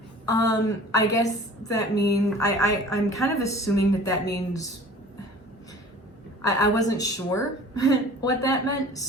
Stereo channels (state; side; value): normal; both; correlation 0.45